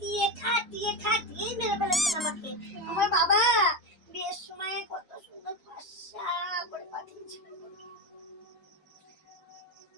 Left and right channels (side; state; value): both; normal; correlation 0.16